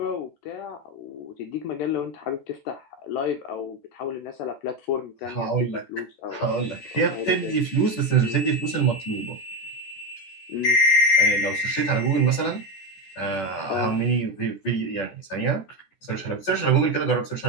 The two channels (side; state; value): right; late; 14 ms